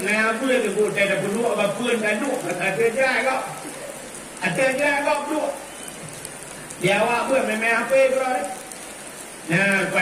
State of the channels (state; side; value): identical; both; correlation 1.00